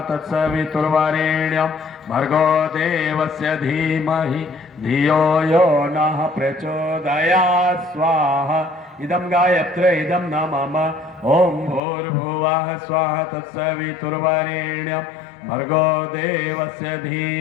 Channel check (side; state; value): right; drops out; at 11.8 s